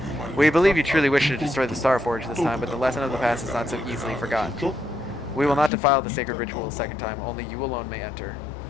We believe you truly wish to destroy the Star Forge this time, but the lesson of the past is not so easily forgotten. We will not defile the sacred ritual a second time. Only you alone may enter.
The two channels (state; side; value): drops out; right; at 5.7 s